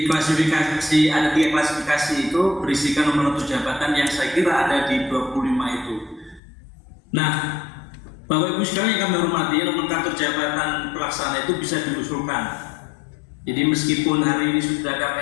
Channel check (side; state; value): right; drops out; at 6.4 s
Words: klasifikasi, ada 3 klasifikasi itu berisikan nomor jabatan yang saya kira ada di 25 itu. Nah, Bapak Ibu sekalian yang kami hormati, nomenklatur jabatan pelaksana itu bisa diusulkan. Jadi meskipun hari ini sudah ada